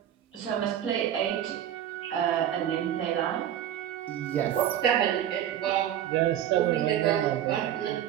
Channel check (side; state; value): left; quieter; 10.8 dB